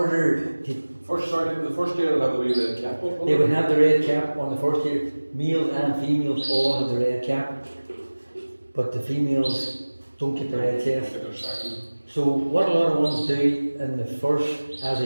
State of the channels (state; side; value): inverted; both; correlation -1.00